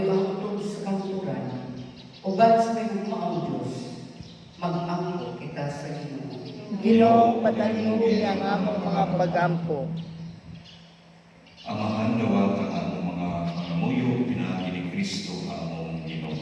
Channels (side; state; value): both; identical; correlation 1.00